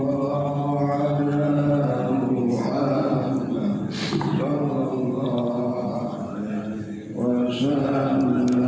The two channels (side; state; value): both; identical; correlation 1.00